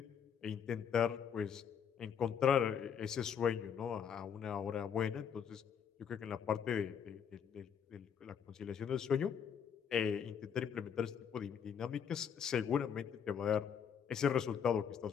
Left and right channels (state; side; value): quieter; right; 7.6 dB